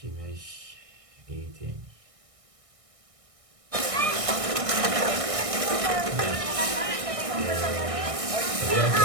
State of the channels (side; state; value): left; late; 1.6 ms